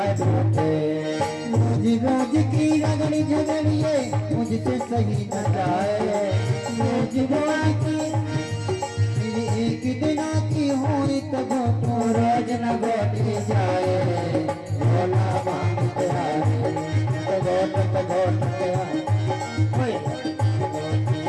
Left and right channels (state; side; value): identical; both; correlation 1.00